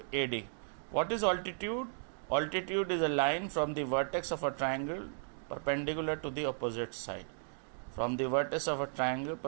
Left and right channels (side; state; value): left; silent; digital silence